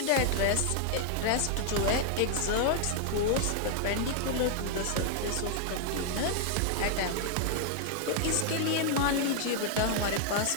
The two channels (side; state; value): both; different; correlation 0.00